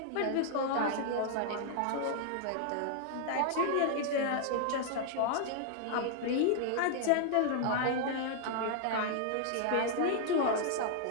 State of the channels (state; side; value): different; both; correlation -0.01